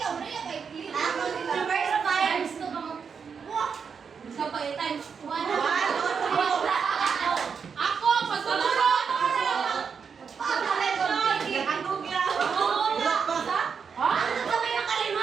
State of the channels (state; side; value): quieter; left; 6.2 dB